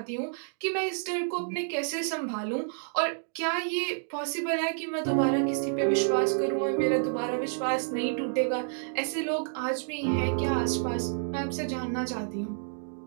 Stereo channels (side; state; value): left; silent; digital silence